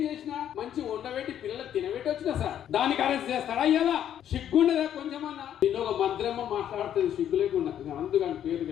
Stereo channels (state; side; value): quieter; right; 10.2 dB